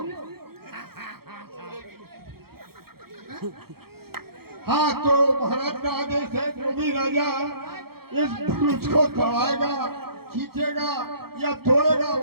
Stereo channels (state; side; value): late; left; 0.95 ms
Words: हाँ, तो महाराज का आदेश है, जो भी राजा इस धनुष को चढ़ाएगा, खींचेगा या तोड़ेगा,